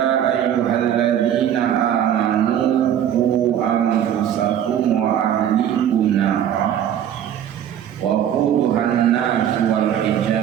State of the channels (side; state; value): left; quieter; 10.0 dB